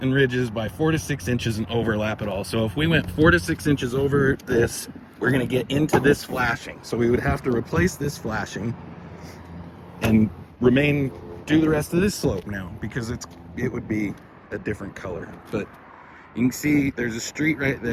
ridges by 4 to 6 inches and overlap it all. So if we went 4 to 6 inches over this, we're going to get into this flashing. So we would have to replace this flashing and do the rest of this slope now because it would be a different color. But you can see there's a street right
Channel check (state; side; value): identical; both; correlation 1.00